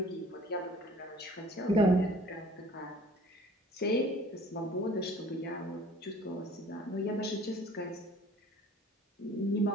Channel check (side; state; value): both; normal; correlation 0.51